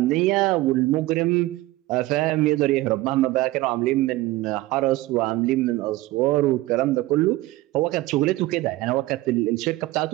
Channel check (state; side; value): quieter; left; 18.0 dB